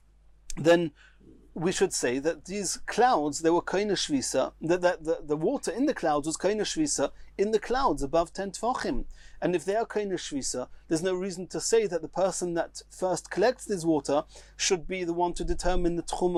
then we should say that these clouds, they were kaina shvisa, that the water in the clouds was kaina shvisa in the clouds above 10 tvachim. And if they are kaina shvisa, there's no reason to say that the person that first collects this water should be the one to determine the tchum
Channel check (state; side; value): identical; both; correlation 1.00